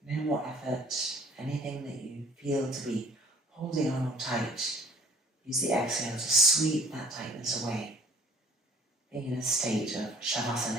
No more effort, anything that you feel to be holding on or tight, use the exhale to sweep that tightness away, being in a state of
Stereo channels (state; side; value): normal; both; correlation 0.53